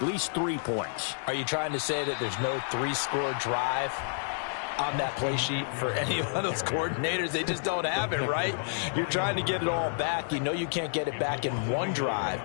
least 3 points. Are you trying to say that there's no 3-score drive on that play sheet for any of those coordinators? They just don't have it, right? You're trying to get it all back. You know you can't get it back in one drive,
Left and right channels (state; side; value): silent; right; digital silence